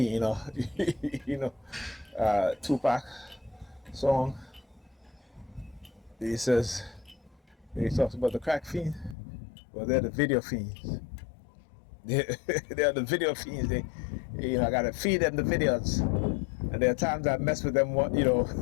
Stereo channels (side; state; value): right; drops out; at 9.2 s